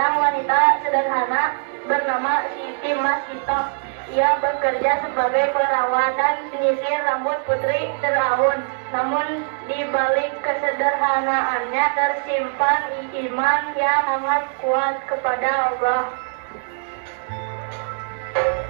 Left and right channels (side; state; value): left; silent; digital silence